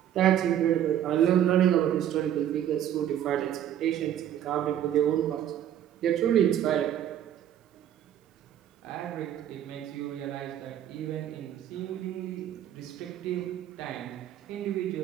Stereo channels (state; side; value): quieter; left; 10.8 dB